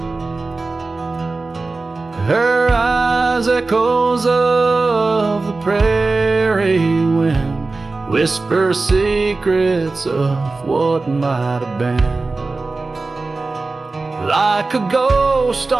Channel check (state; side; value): quieter; left; 3.6 dB